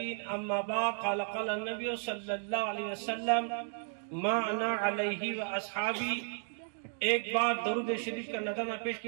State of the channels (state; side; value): silent; left; 55 dB below the other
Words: أما بعد قال النبي صلى الله عليه وسلم ما أنا عليه وأصحابي۔ ایک بار درود شریف کا نظرانہ پیش